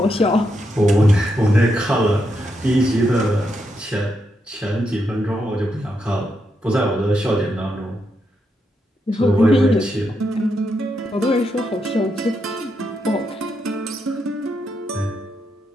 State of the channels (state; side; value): normal; both; correlation 0.82